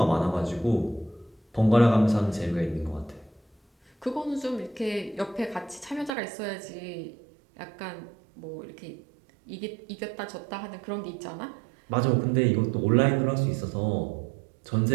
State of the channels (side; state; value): left; drops out; at 6.1 s